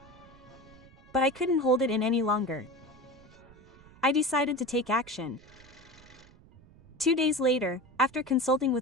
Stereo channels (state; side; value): noise; right; rumble, 24 dB below the sound